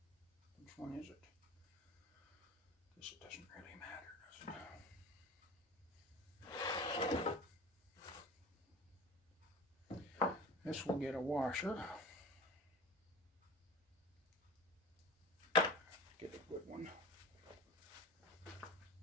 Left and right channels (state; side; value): normal; both; correlation 0.35